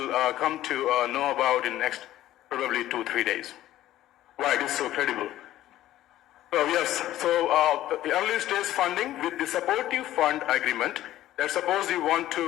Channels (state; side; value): quieter; right; 13.9 dB